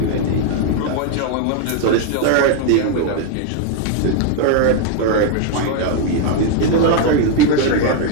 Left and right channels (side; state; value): both; different; correlation 0.01